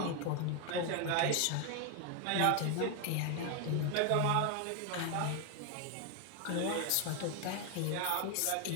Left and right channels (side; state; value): both; different; correlation 0.01